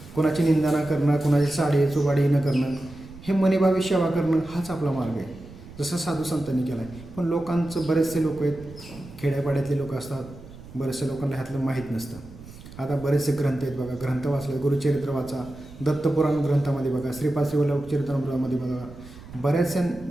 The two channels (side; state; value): right; noise; rumble, 17 dB below the sound